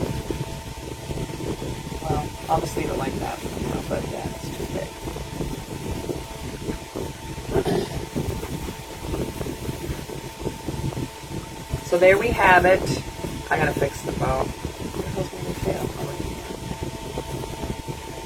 Well, I'll just leave it like that for now, but yeah, it's too big. So there we have it. I gotta fix the bow.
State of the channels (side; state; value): both; identical; correlation 1.00